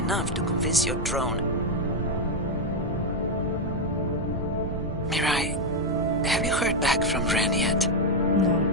to convince your drone. Mirai, have you heard back from Ren yet?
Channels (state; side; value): normal; both; correlation 0.03